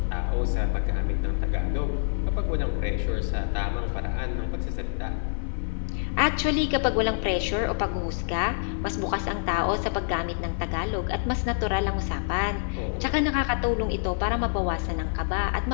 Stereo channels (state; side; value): silent; right; digital silence